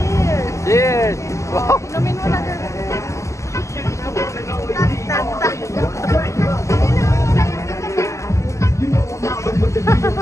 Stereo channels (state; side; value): late; right; 0.14 ms